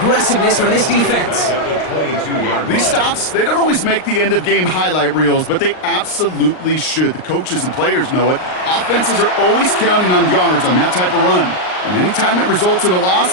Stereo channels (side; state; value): right; late; 39 ms